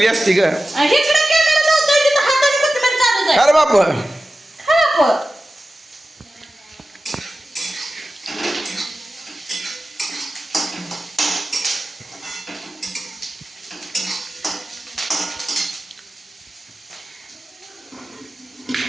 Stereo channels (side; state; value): both; normal; correlation 0.94